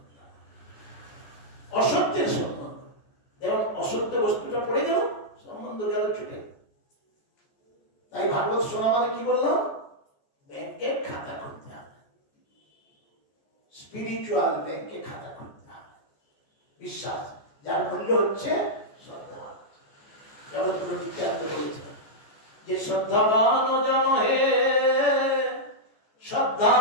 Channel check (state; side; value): late; right; 14 ms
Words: অসত্যের সম্বন্ধ। যেমন অসত্য বস্তুটা পড়ে গেল, সম্বন্ধ গেল ছুটে। তাই ভাগবত শোনা মানে কি বললাম? ব্যাংকে খাতা খুলতে হবে, স্পিরিচুয়াল ব্যাংকে খাতা খুলতে হবে। বিশ্বাস, যার মূল্য হচ্ছে শ্রদ্ধা। জগৎগুরু নিত্যানন্দ বলেছেন যে শ্রদ্ধাবান জন হে,